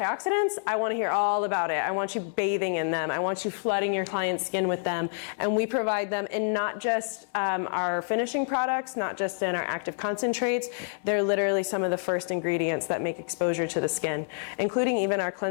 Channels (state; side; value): silent; right; digital silence